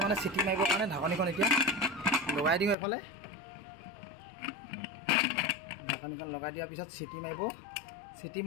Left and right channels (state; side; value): drops out; right; at 2.8 s